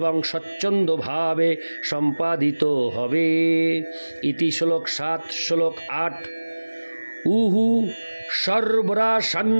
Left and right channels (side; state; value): both; inverted; correlation -1.00